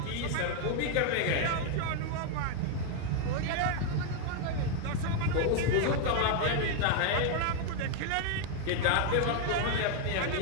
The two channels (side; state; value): both; different; correlation 0.01